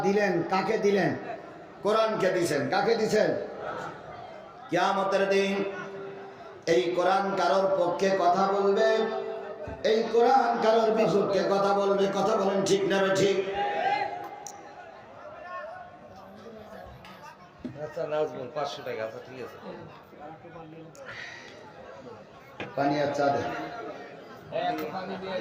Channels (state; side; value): identical; both; correlation 1.00